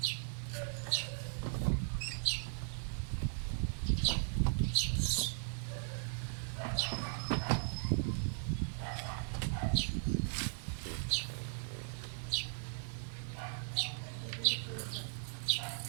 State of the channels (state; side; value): silent; left; digital silence